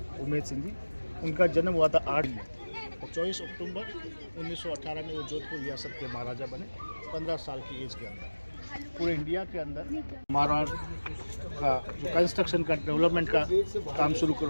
उमेद सिंह जी। उनका जन्म हुआ था 8 में और 24 अक्टूबर 1918 में वो जोधपुर रियासत के महाराजा बने 15 साल की एज के अंदर। पूरे इंडिया के अंदर मारवाड़ का जो कंस्ट्रक्शन का डेवलपमेंट का काम शुरू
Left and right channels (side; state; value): both; inverted; correlation -1.00